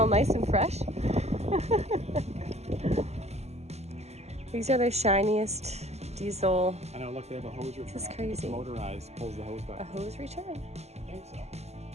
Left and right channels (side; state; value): left; late; 0.31 ms